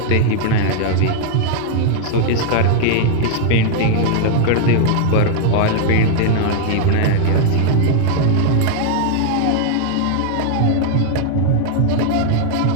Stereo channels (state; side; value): different; both; correlation 0.00